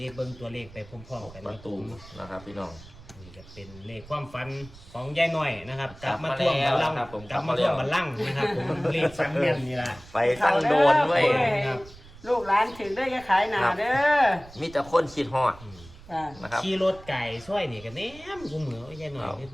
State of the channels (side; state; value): right; noise; rumble, 20 dB below the sound